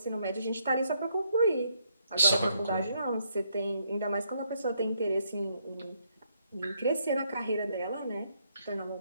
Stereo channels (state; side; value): inverted; both; correlation -0.73